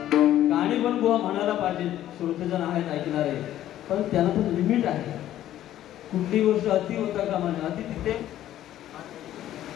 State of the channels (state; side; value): quieter; right; 12.6 dB